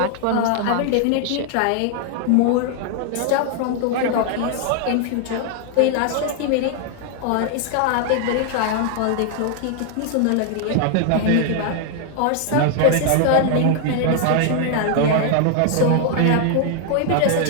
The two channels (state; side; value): different; both; correlation 0.00